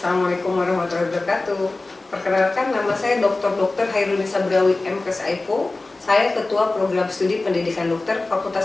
warahmatullahi wabarakatuh. Perkenalkan, nama saya Dr. Hairunisa Berawi M.Kes.Aipo. Saya Ketua Program Studi Pendidikan Dokter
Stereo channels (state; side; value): quieter; right; 3.2 dB